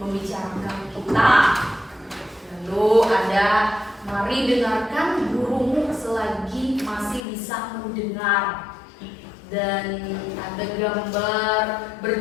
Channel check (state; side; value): drops out; right; at 7.2 s